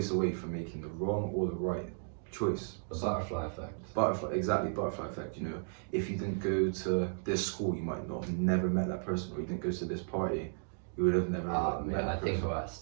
away from making the wrong or the right choice. The butterfly effect. Exactly, butterfly effect. You know, if you didn't go to this school, you might not have never met that person, or you didn't go to this party, you would have never met that I person. think about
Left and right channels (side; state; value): left; silent; digital silence